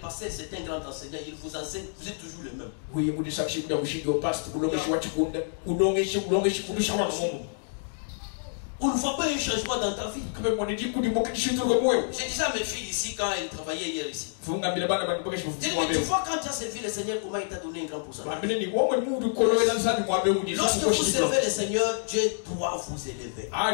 c'est un grand enseignant, il vous enseigne, vous êtes toujours le même. On ne voit pas un changement dans ta vie. J'ai déjà mes filles ici quand elles travaillaient hier ici. Mais tu vois quand tu as servi le Seigneur, comment il t'a donné un grand pourcentage. Lorsque vous servez le Seigneur, Dieu doit vous élever.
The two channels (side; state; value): right; silent; digital silence